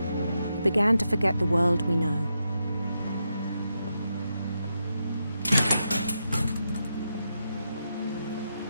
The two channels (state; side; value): inverted; both; correlation -0.85